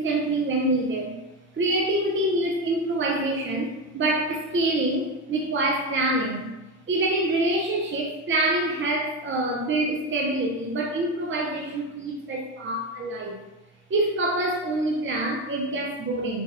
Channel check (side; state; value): both; normal; correlation 0.16